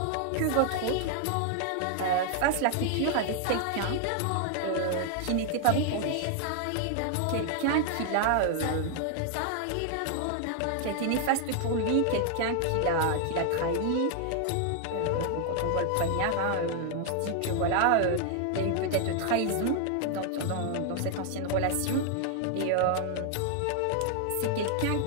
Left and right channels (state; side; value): different; both; correlation 0.00